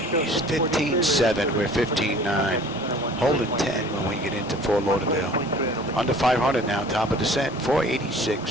15.7, we're 15.9. Holding 10 when we get into Fort Lauderdale. Under 500 now, top of descent,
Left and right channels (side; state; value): both; normal; correlation 0.48